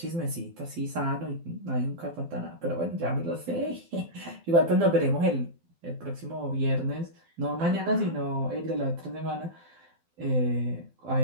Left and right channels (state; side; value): late; left; 12 ms